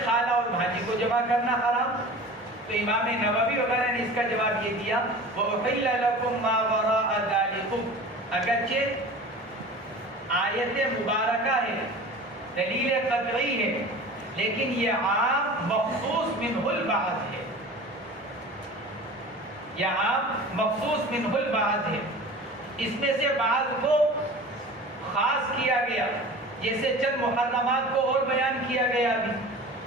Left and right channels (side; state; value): both; normal; correlation 0.38